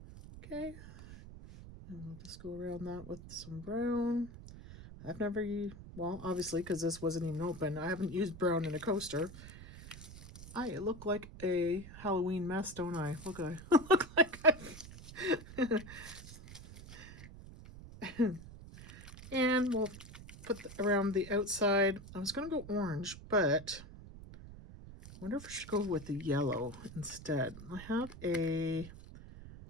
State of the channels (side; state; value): right; noise; rumble, 15 dB below the sound